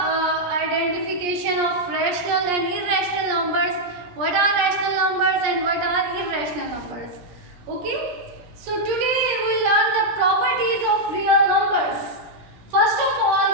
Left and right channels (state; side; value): late; left; 17 ms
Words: of rational and irrational numbers. What are rational numbers and what are irrational numbers? Okay. So today we will learn the properties of real numbers. First of all,